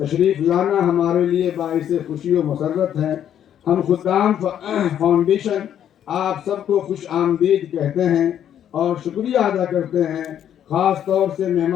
لانا ہمارے لیے باعث خوشی و مسرت ہے. ہم خدام فاؤنڈیشن آپ سب کو خوش آمدید کہتے ہیں اور شکریہ ادا کرتے ہیں. خاص طور سے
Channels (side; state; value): right; quieter; 10.0 dB